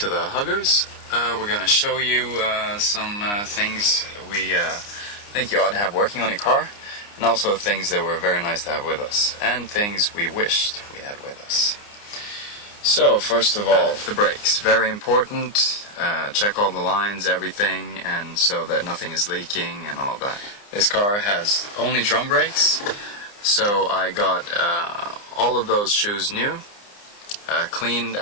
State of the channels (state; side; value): late; right; 29 ms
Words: the Huggers. We're going to show you some things we think you ought to have working on your car, and also things that were very nice to have with us, and things we wished we had with us. So first of all, the brakes. Very important. Check all the lines, everything, and so that nothing is leaking and all that. This car has only drum brakes, so I got all of those shoes new. Cleaned